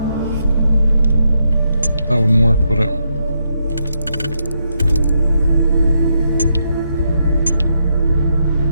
That wouldn't work, would it?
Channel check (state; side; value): inverted; both; correlation -0.80